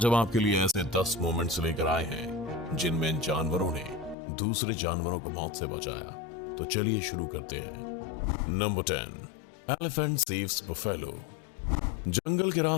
हम आपके लिए ऐसे 10 मोमेंट्स लेकर आए हैं जिनमें इन जानवरों ने दूसरे जानवरों को मौत से बचाया। तो चलिए शुरू करते हैं। Number 10, elephant saves buffalo. जंगल के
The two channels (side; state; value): right; drops out; at 4.2 s